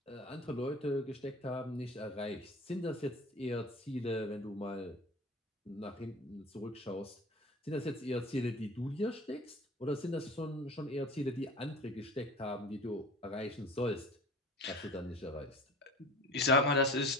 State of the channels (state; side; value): normal; both; correlation 0.40